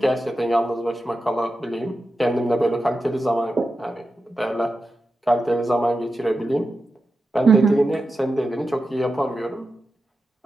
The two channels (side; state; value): both; normal; correlation 0.91